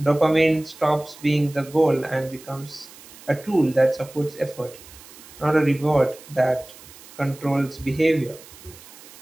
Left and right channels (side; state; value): right; noise; hiss, 20 dB below the sound